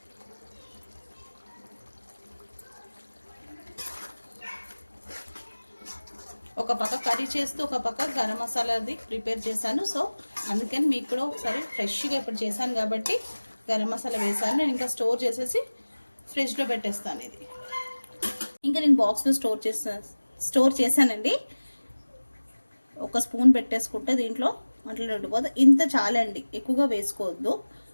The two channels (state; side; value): inverted; both; correlation -1.00